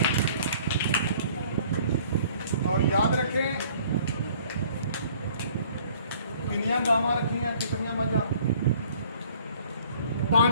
और याद रखें कितनियां गावां रखी हैं, कितनियां मझां?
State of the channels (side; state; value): both; inverted; correlation -0.56